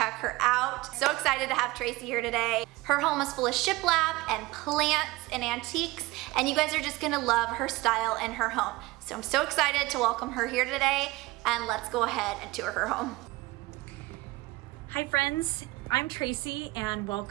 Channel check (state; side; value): quieter; left; 20.9 dB